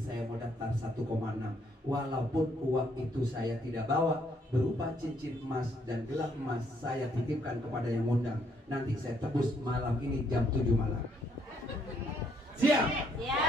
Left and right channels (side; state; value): both; normal; correlation 0.70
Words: saya mau daftar 1,6. Walaupun uang itu saya tidak bawa, berupa cincin emas dan gelang emas, saya titipkan kepada yang undang. Nanti saya tebus malam ini jam 7 malam. Siap?